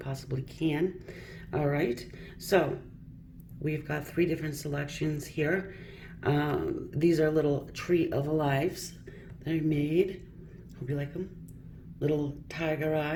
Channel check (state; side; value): identical; both; correlation 1.00